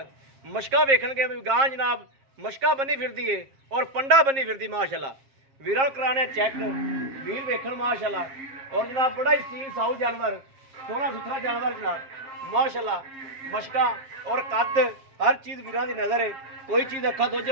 मशका वेखणगे भी गां जनाब मशका बनी फिरदी है और पंडा बनी फिरदी माशाल्लाह। वीरा कराने चेक वीर वेखण माशाल्लाह। और जनाब बड़ा ही सील साऊ जानवर, सोहना सुथरा जानवर जनाब माशाल्लाह। मशका और कद हर चीज़ वीरां दी नज़र है, कोई चीज़ अखा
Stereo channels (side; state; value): left; late; 7.4 ms